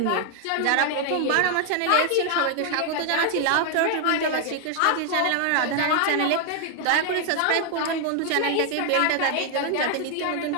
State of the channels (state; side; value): different; both; correlation 0.00